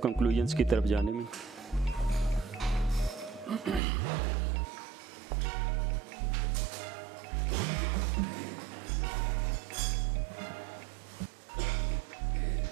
कंक्लूजन्स की तरफ जाने में।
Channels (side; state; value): left; drops out; at 3.8 s